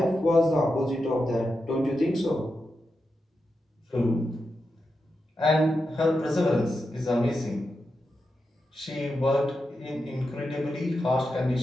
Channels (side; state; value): both; normal; correlation 0.88